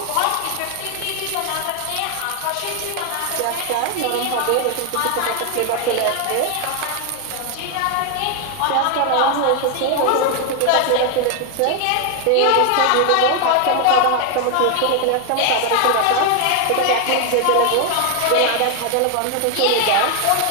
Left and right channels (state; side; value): different; both; correlation 0.01